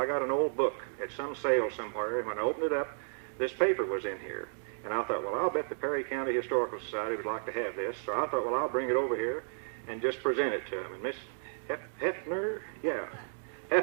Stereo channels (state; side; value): silent; left; digital silence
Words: got an old book at some sale somewhere, and when I opened it up, this paper was in here. And I thought, well, I'll bet the Perry County Historical Society would like to have this. So I thought, well, I'll bring it over here and just present it to them. And Miss